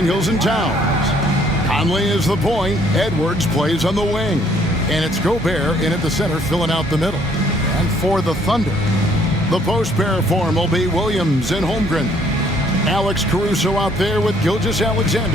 and Towns. Conley is the point. Edwards plays on the wing. And it's Gobert in at the center, filling out the middle. And for the Thunder, the post pair form will be Williams and Holmgren. Alex Caruso out there with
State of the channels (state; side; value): normal; both; correlation 0.63